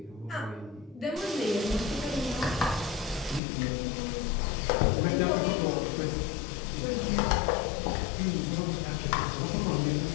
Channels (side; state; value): right; drops out; at 3.4 s